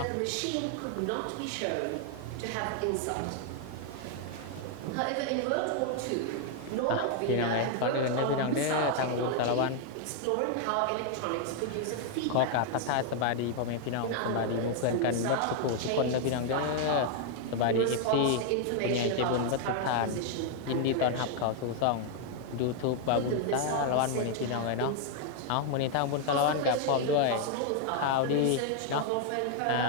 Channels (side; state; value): both; different; correlation 0.00